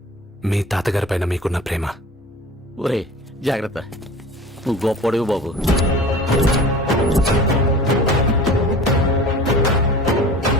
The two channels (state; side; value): normal; both; correlation 0.40